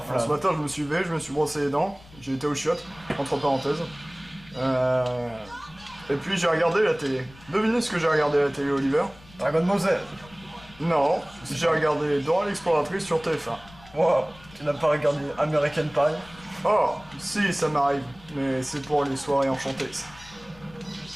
Ce matin, je me suis levé, je me suis brossé les dents, j'ai été aux chiottes, entre parenthèses. Et puis j'ai regardé la télé. Devinez ce que j'ai regardé à la télé, Oliver? Dragon Ball Z. Non, j'ai regardé Dora l'exploratrice sur TF1. Wow, tu n'as pas regardé American Pie? Oh, si, ça m'arrive, mais c'est pour les soirées enchantées, ça.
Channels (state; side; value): noise; left; rumble, 23 dB below the sound